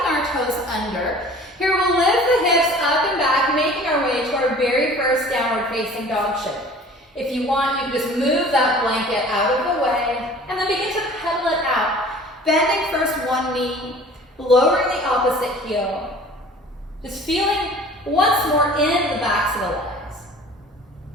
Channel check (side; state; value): both; normal; correlation 0.46